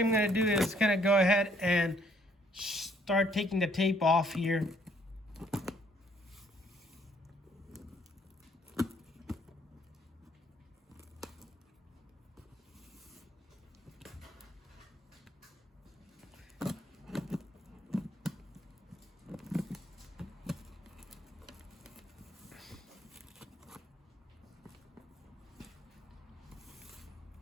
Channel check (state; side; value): normal; both; correlation 0.66